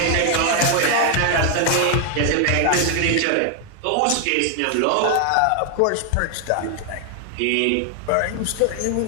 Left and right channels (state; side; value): different; both; correlation 0.00